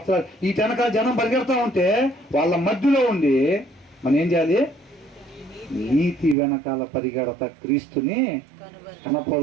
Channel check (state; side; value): drops out; left; at 6.4 s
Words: వీటి వెనకాల జనం పరిగెడతా ఉంటే వాళ్ళ మధ్యలో ఉండి మనం ఏం చేయాలి? నీతి వెనకాల పరిగెడతా క్రీస్తుని